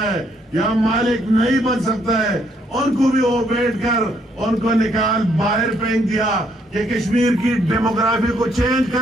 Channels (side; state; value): both; normal; correlation 0.71